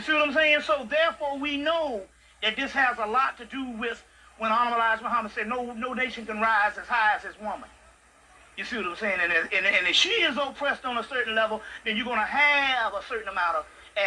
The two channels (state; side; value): identical; both; correlation 1.00